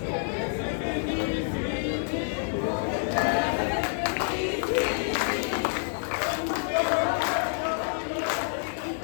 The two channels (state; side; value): silent; right; 59 dB below the other